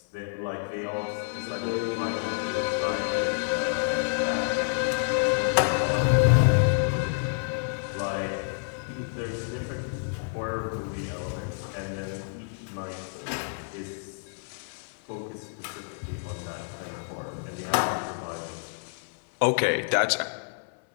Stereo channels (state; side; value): silent; right; 59 dB below the other